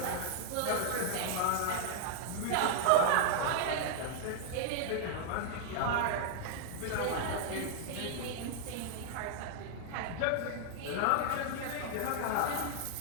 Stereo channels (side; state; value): both; different; correlation -0.01